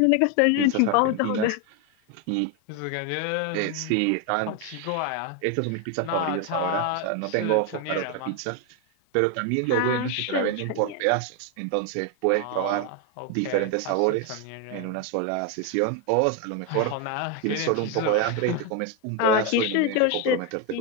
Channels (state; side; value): different; both; correlation 0.01